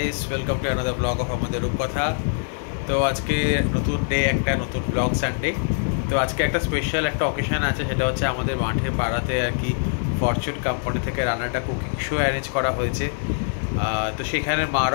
welcome to another blog of আমাদের রূপকথা। তো আজকে নতুন ডে, একটা নতুন ব্লগ সানডে। তো আজকে একটা স্পেশাল একটা অকেশন আছে, সেটা হচ্ছে আমাদের মাঠে পাড়াতে আর কি ফরচুন কোম্পানি থেকে রান্নাটা কুকিং শো অ্যারেঞ্জ করা হয়েছে। তো সেখানে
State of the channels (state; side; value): silent; right; digital silence